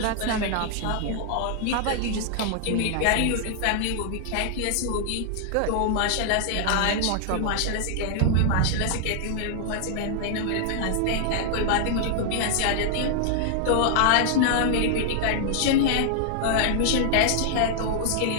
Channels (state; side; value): different; both; correlation -0.01